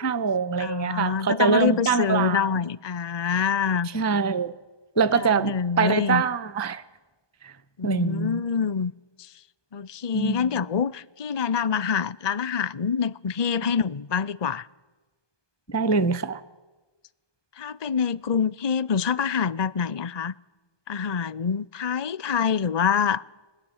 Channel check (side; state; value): right; late; 1.2 ms